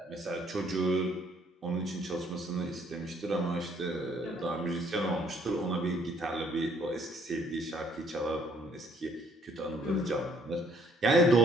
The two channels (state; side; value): normal; both; correlation 0.64